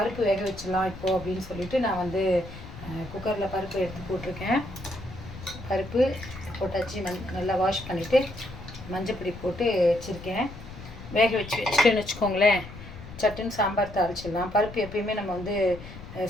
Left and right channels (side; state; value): left; noise; rumble, 14 dB below the sound